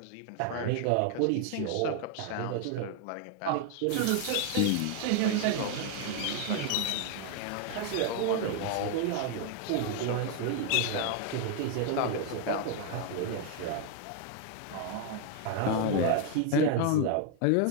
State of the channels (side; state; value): both; different; correlation 0.00